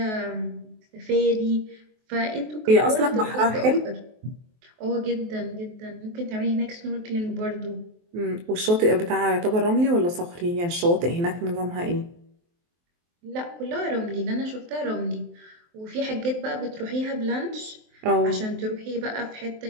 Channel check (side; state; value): left; late; 23 ms